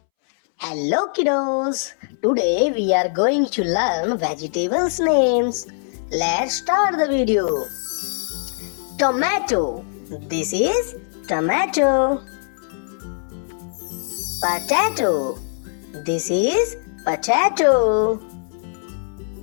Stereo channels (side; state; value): right; silent; 64 dB below the other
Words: Hello kiddos, today we are going to learn vegetables names. Let's start the video. Tomato, this is tomato. Potato, this is potato.